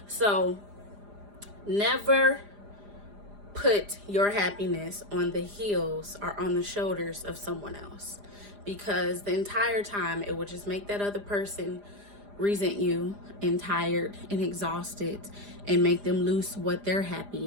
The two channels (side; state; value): left; late; 4.9 ms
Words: So never put your happiness on the heels or on the shoulders of someone else, because the entire time it will just make that other person resent you and tired and exhausted and make them lose what their happy